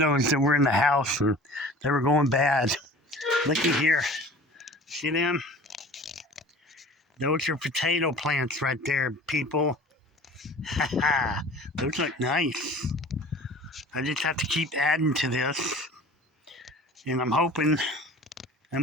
that were in the house, and they were going bad. Looky here. See them? Those are potato plants right there, people. Those look nice. I just have to keep adding to this. And I'm hoping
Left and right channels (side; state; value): both; normal; correlation 0.43